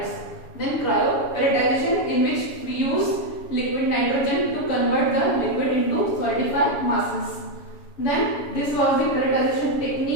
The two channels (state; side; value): late; right; 7.1 ms